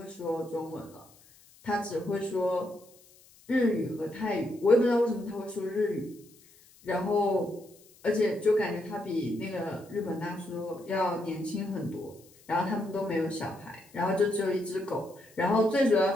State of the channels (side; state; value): left; noise; hiss, 27 dB below the sound